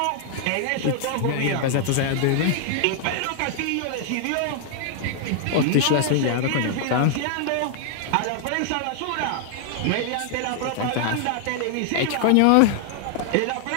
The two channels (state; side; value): different; both; correlation 0.00